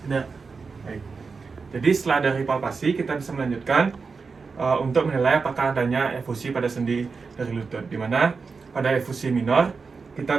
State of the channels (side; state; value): left; quieter; 4.8 dB